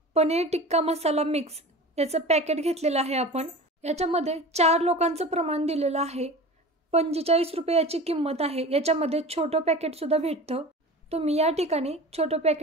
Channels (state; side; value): normal; both; correlation 0.35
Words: पनीर टिक्का मसाला मिक्स याचं पॅकेट घेतलेलं आहे आपण। याच्यामध्ये 4 लोकांचं प्रमाण दिलेलं आहे। 45 रुपये याची किंमत आहे। याच्यामध्ये छोटं पॅकेट सुद्धा भेटतं, तुम्ही या ठिकाणी छोटं